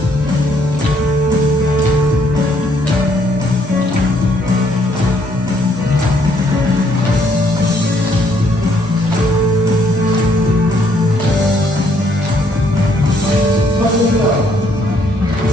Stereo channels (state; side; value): normal; both; correlation 0.68